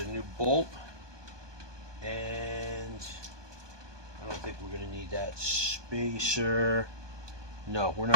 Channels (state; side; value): late; left; 1.2 ms